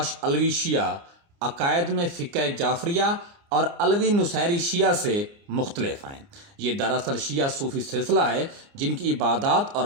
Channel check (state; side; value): late; left; 29 ms